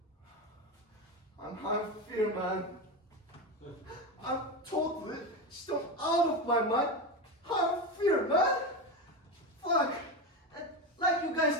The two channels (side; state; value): both; normal; correlation 0.17